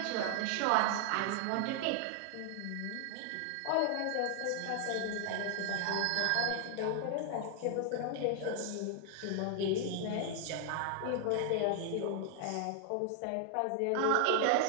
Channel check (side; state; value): both; different; correlation 0.00